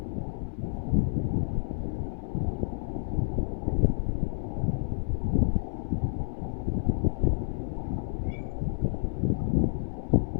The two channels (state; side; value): silent; right; 58 dB below the other